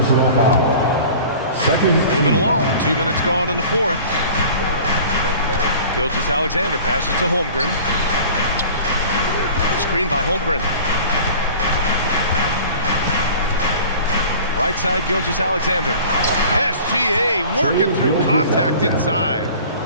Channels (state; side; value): inverted; both; correlation -0.43